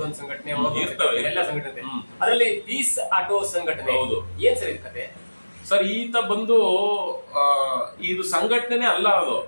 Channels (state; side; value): inverted; both; correlation -1.00